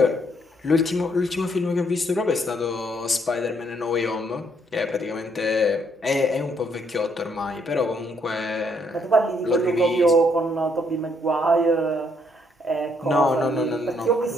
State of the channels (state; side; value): normal; both; correlation 0.71